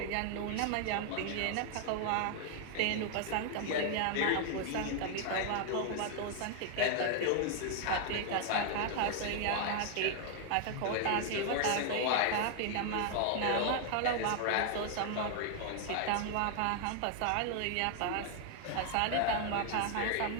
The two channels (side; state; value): both; different; correlation 0.00